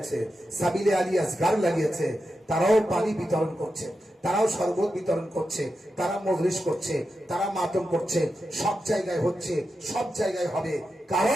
সাবিলে আলী আসগার লাগিয়েছে। তারাও পানি বিতরণ করছে, তারাও শরবত বিতরণ করছে, তারা মজলিস করছে, তারা মাতম করছে। সব জায়গায় হচ্ছে, সব জায়গায় হবে।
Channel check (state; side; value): normal; both; correlation 0.89